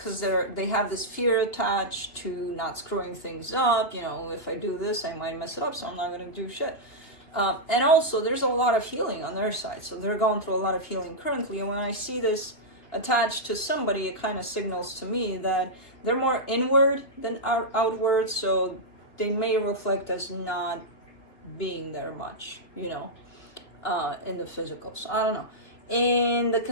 they have this fear attached to not screwing things up. You know, if I do this, I might mess it up, so I'm not going to do shit. And also, there's a lot of healing on their side. So they're going through a lot of healing currently. And when I see this attached to somebody, it kind of signals to me that they're more inward than outward. So they may reflect as not being there much, you know, in the physical. So I don't know. In the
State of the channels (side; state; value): right; late; 2.9 ms